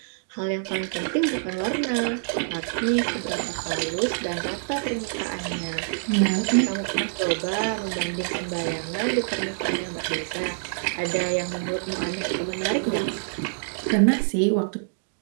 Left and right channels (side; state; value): left; silent; digital silence